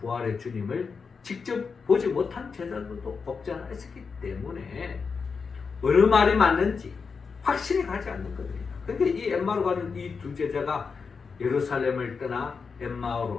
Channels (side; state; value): right; quieter; 5.3 dB